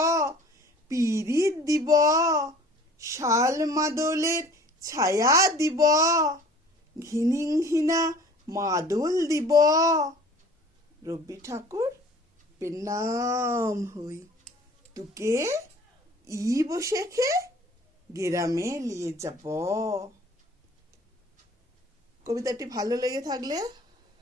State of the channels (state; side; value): normal; both; correlation 0.49